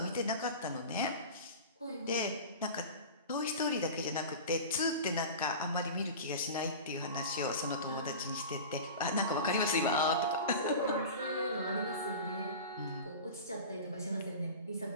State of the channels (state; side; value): inverted; both; correlation -0.33